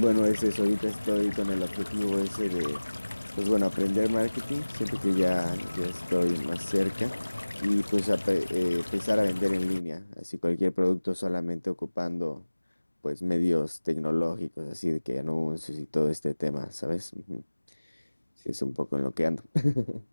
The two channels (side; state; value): both; inverted; correlation -1.00